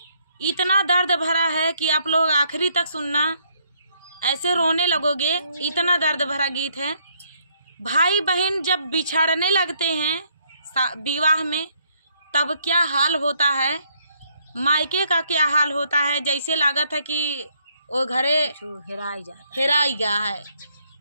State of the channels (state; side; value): inverted; both; correlation -0.70